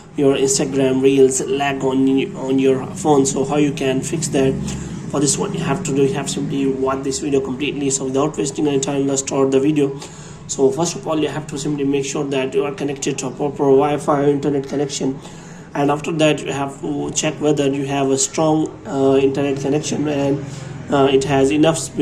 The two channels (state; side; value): identical; both; correlation 1.00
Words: your Instagram Reels lag on your phone, so how you can fix that? For this, what you have to do, you have simply watch this video completely. So without wasting any time, let's start the video. So first of all, you have to simply make sure that you are connected to a proper Wi-Fi internet connection, and after that you have to check whether you have a strong internet connection and it has enough